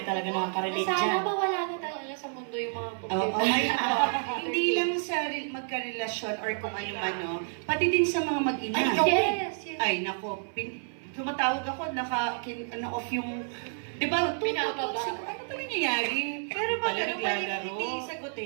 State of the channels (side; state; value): left; silent; 58 dB below the other